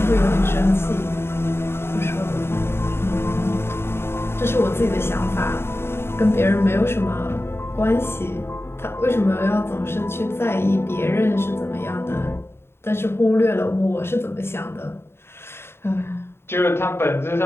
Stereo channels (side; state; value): right; late; 0.12 ms